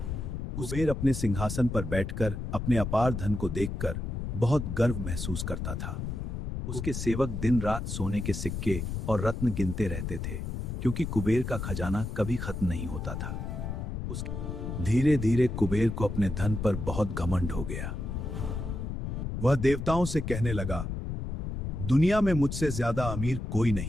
कुबेर अपने सिंहासन पर बैठकर अपने अपार धन को देखकर बहुत गर्व महसूस करता था। उसके सेवक दिन रात सोने के सिक्के और रत्न गिनते रहते थे, क्योंकि कुबेर का खजाना कभी खत्म नहीं होता था। धीरे धीरे कुबेर को अपने धन पर बहुत घमंड हो गया। वह देवताओं से कहने लगा, दुनिया में मुझसे ज्यादा अमीर कोई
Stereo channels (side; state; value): left; noise; rumble, 4 dB below the sound